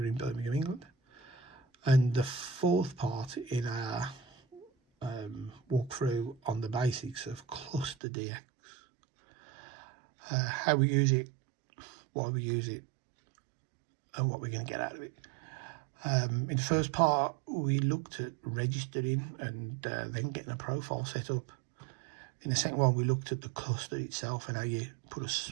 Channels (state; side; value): drops out; left; at 8.0 s